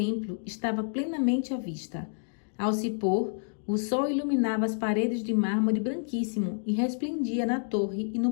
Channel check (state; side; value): silent; right; digital silence